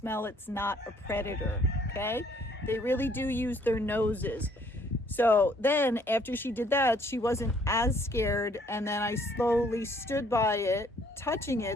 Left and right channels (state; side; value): normal; both; correlation 0.63